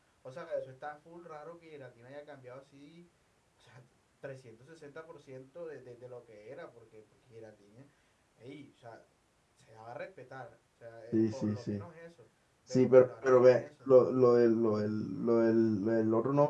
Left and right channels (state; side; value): identical; both; correlation 1.00